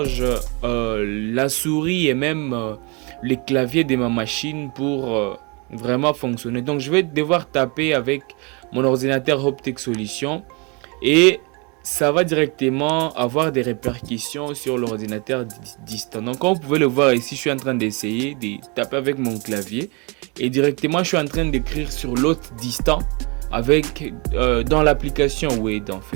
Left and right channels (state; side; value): quieter; left; 30.6 dB